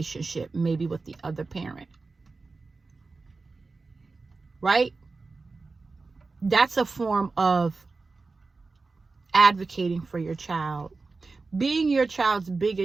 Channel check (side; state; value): left; quieter; 3.9 dB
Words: maybe with the other parent. Right? That's a form of advocating for your child. Being your child's